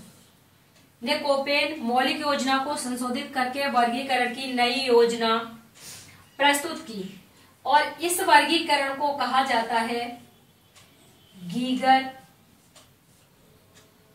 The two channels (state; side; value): identical; both; correlation 1.00